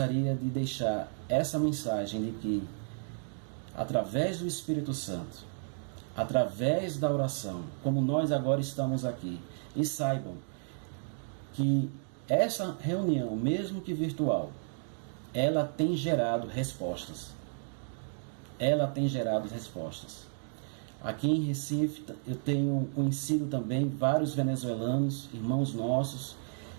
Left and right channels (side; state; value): left; silent; digital silence